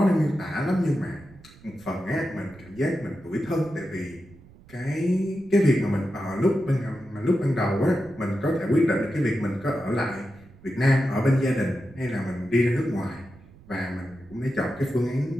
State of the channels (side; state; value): right; noise; rumble, 23 dB below the sound